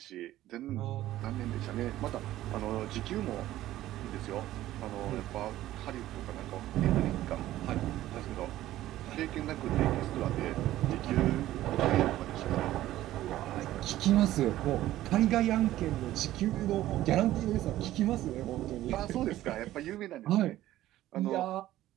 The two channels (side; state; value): left; quieter; 14.5 dB